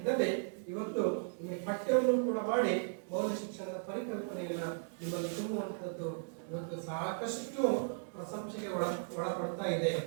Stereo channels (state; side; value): silent; left; digital silence